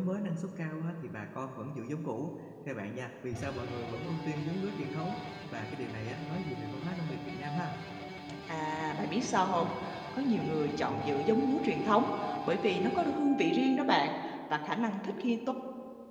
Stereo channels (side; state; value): both; identical; correlation 1.00